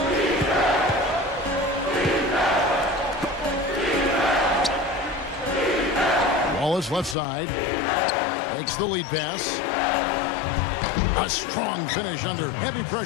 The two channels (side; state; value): right; drops out; at 7.2 s